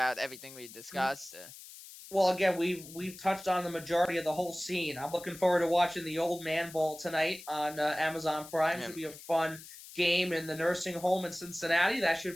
everything we discussed? Well, again, we've touched on the majority of the whole scene. I'm looking forward to watching the Old Man Bowl tonight on Amazon Prime. Yeah, Should be a fun game in the nursing home in Cincinnati. That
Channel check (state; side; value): noise; left; hiss, 16 dB below the sound